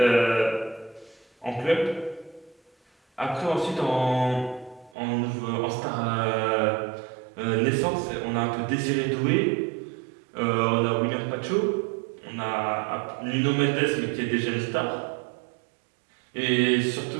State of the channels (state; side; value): drops out; left; at 4.9 s